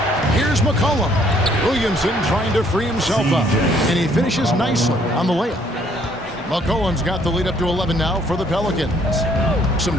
Here's McCollum. Williamson trying to free himself up, and he finishes nicely on the layup. McCollum's got the lead up to 11 now for the Pelicans. Some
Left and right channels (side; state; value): both; normal; correlation 0.64